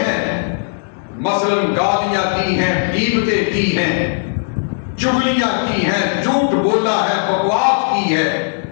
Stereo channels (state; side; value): silent; right; digital silence